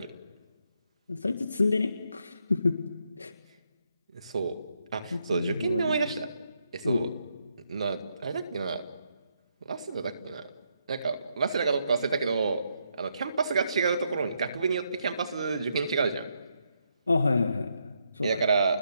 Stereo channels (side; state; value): both; inverted; correlation -0.78